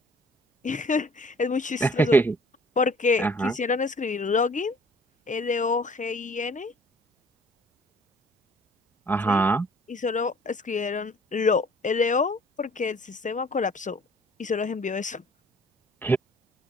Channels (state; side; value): normal; both; correlation 0.54